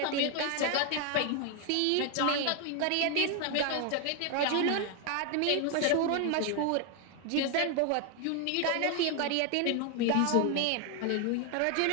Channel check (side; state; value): both; different; correlation 0.01